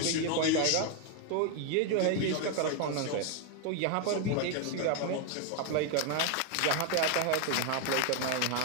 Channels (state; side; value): different; both; correlation 0.01